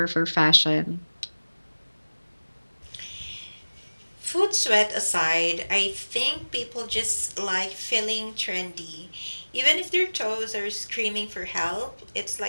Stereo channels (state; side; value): inverted; both; correlation -1.00